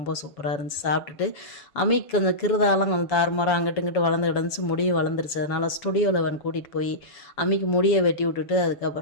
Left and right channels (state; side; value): late; right; 7.0 ms